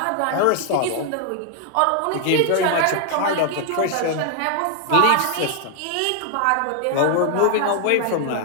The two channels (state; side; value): different; both; correlation 0.00